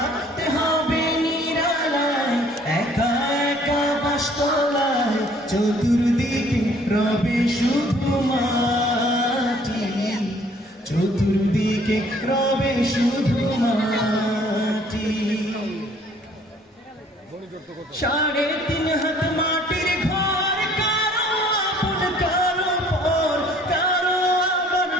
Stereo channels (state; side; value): normal; both; correlation 0.58